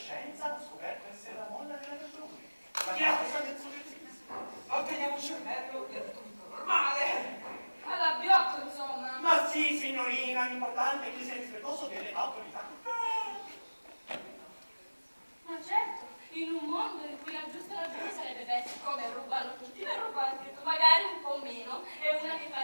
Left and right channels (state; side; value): inverted; both; correlation -1.00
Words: ha scoperto essere la molla della ragione. Ma che la cosa del Otteniamo un cervello e tutto normale. Alla biocco, insomma. Ma sì, signorina, l'importante è che sia rispettoso delle autorità. Ma certo, in un mondo in cui la giusta ragione sarebbe beh, come rubano tutti, ne ruba anche tu, magari un po' meno, e una che fa